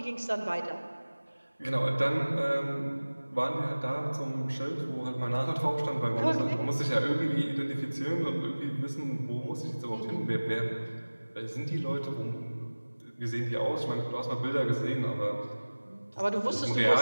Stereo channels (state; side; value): inverted; both; correlation -1.00